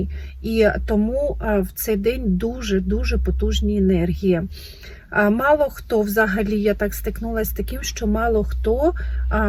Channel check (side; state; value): both; identical; correlation 1.00